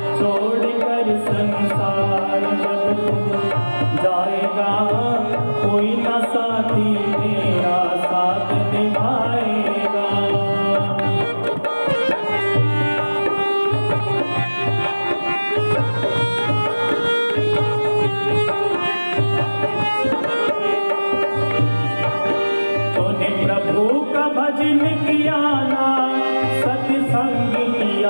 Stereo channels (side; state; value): both; inverted; correlation -1.00